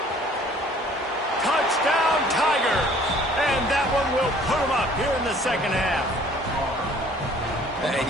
Touchdown, Tigers! And that one will put them up here in the second half. And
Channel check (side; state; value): both; normal; correlation 0.55